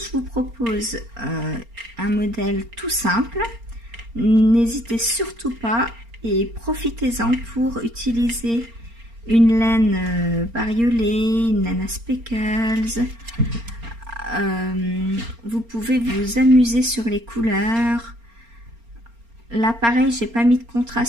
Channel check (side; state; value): left; late; 4.3 ms